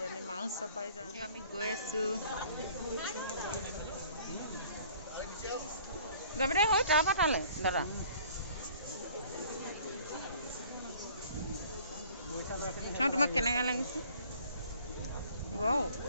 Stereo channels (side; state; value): both; inverted; correlation -0.53